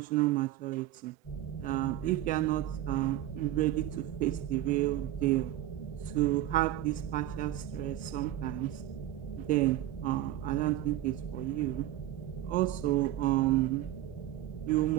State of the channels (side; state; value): left; quieter; 13.5 dB